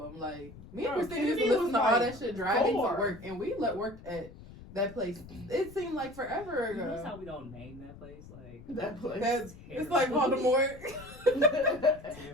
Like, me and Bro, Christina used to Kennedy listen was to all like that shit driving 4. to work, and we worked at that place. It seemed like forever You notice how ago. we don't name that place? Like That place. That's, terrible. it's like Voldemort.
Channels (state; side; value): noise; left; rumble, 18 dB below the sound